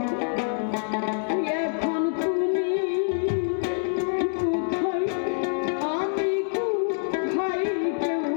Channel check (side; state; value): right; silent; digital silence